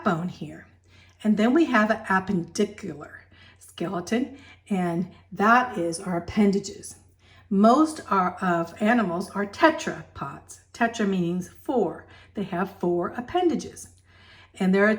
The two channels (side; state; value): both; identical; correlation 1.00